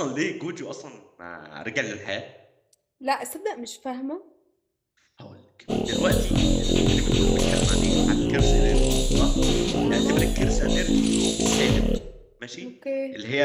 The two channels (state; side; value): identical; both; correlation 1.00